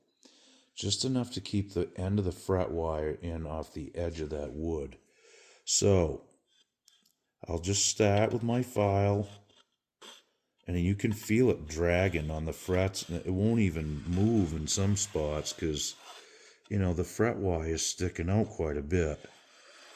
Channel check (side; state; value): both; identical; correlation 1.00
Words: Just enough to keep the end of the fret wire in off the edge of that wood. So I'll just start with my file, and you can feel it dragging on the frets. It won't even move in some spots because, the fret wire is sticking out quite a bit.